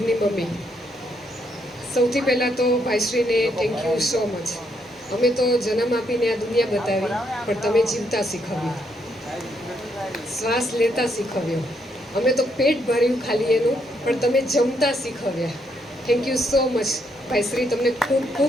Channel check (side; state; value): both; normal; correlation 0.75